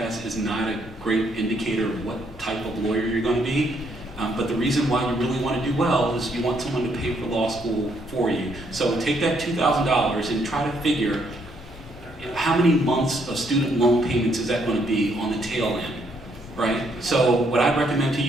is not a great indicator of what type of lawyer you're going to be. But the reason why you really want to do well is you want someone to pay for law school for you. So take that $2,000 and try to figure how many months of student loan payments is that going to be on the tail end, right? So what I'd recommend to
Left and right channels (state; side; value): normal; both; correlation 0.71